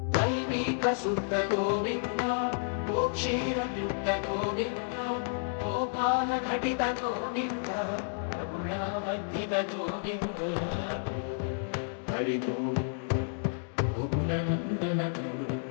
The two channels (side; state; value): right; silent; digital silence